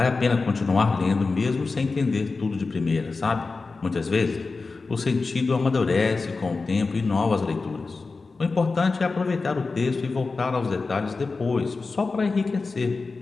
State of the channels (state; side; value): quieter; right; 4.0 dB